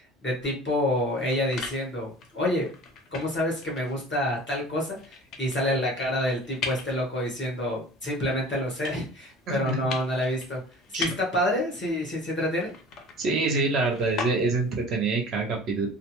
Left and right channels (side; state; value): both; normal; correlation 0.43